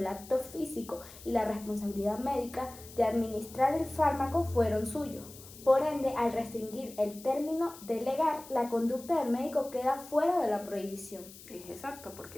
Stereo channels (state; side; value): noise; left; hiss, 18 dB below the sound